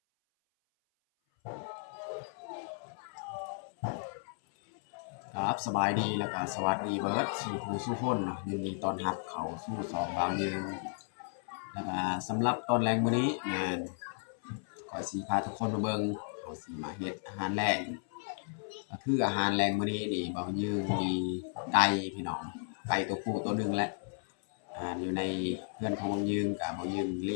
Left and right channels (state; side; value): silent; right; 55 dB below the other